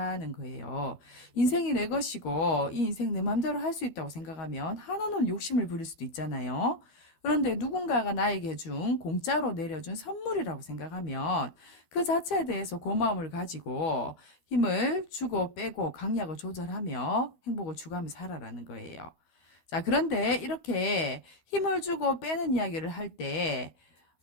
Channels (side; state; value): right; late; 12 ms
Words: 거예요. 인생이 내 것이고 이 인생 내 맘대로 할 수 있다고 생각하면 한없는 욕심을 부릴 수도 있잖아요. 그런데 누군가가 나에게 준 공짜로 내려준 선물이라고 생각하면 그 자체에 대해서 고마움을 가지고 힘을 주고 빼고 강약을 조절하며 행복을 추구하며 살아라는 거예요. 자, 그런데 이렇게 힘을 주고 빼는 이야기를 할 때